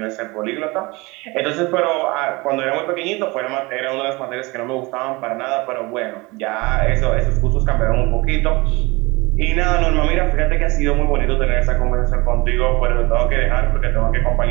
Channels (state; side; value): quieter; left; 24.2 dB